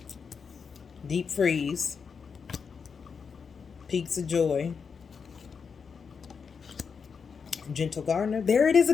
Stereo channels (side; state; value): right; quieter; 5.9 dB